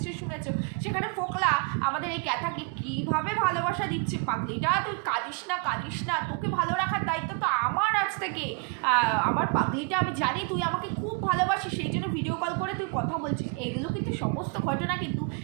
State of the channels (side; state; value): left; quieter; 34.1 dB